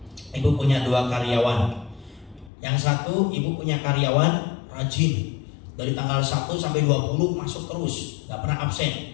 ibu punya 2 karyawan. Yang satu ibu punya karyawan rajin. Dari tanggal 1 sampai 20 masuk terus, gak pernah absen.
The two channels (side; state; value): right; drops out; at 2.5 s